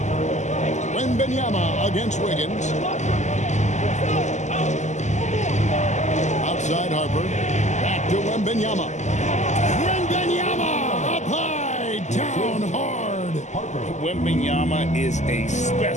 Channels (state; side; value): late; right; 0.34 ms